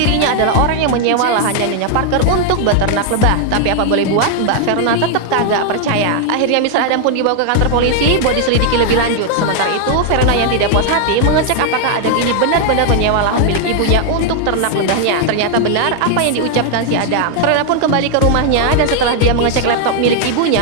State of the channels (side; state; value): both; different; correlation 0.00